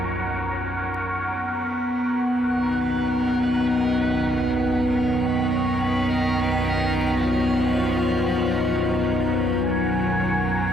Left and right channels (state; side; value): normal; both; correlation 0.73